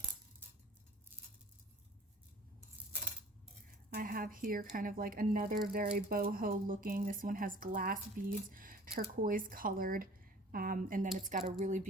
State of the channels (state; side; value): normal; both; correlation 0.47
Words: I have here kind of like another very boho looking, this one has glass beads, turquoise colored, and then it's got a really